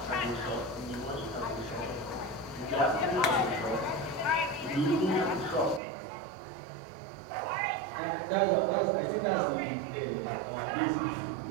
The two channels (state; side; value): drops out; left; at 5.8 s